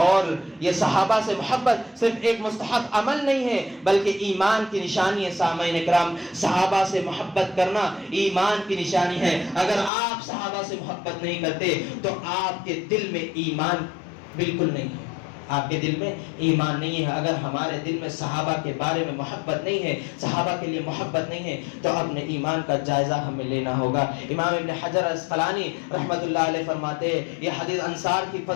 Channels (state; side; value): drops out; right; at 9.9 s